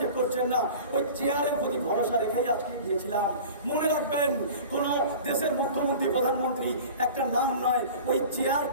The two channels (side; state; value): both; inverted; correlation -0.39